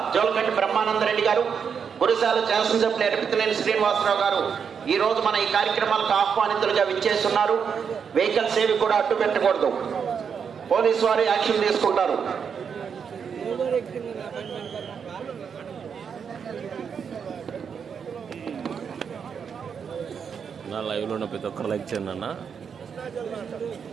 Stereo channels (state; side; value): quieter; left; 6.8 dB